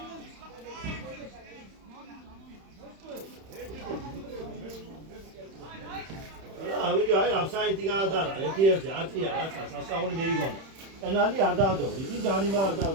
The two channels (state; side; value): late; left; 31 ms